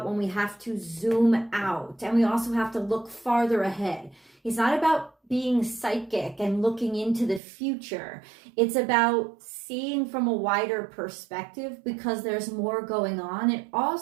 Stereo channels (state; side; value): drops out; left; at 7.4 s